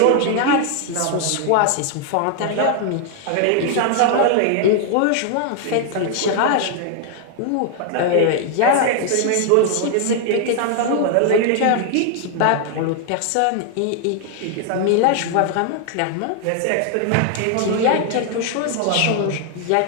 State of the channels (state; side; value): different; both; correlation 0.00